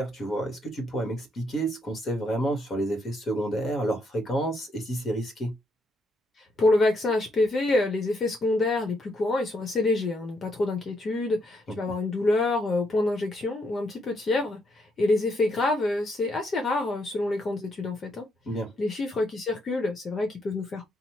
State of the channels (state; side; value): normal; both; correlation 0.75